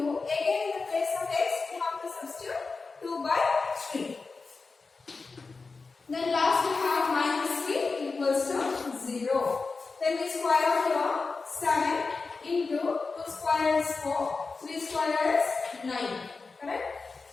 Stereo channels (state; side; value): quieter; right; 4.2 dB